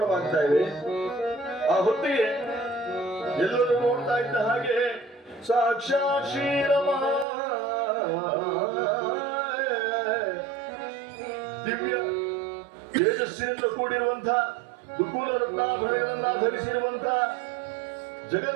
ಇವೆ. ಆ ಹೊತ್ತಿಗೆ ಎಲ್ಲರೂ ನೋಡ್ತಾ ಇದ್ದ ಹಾಗೆ ಸಾಕ್ಷಾತ್ ಶ್ರೀರಮ ದಿವ್ಯ ತೇಜಸ್ಸಿನಿಂದ ಕೂಡಿರುವಂತಹ ದುಕೂಲ ರತ್ನಾಭರಣಗಳನ್ನ ಧರಿಸಿರುವಂತಹ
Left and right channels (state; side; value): drops out; left; at 7.2 s